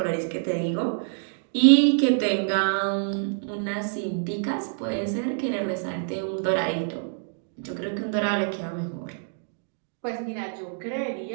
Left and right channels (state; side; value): silent; left; digital silence